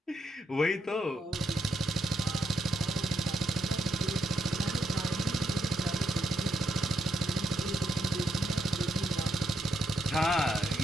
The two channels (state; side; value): normal; both; correlation 0.78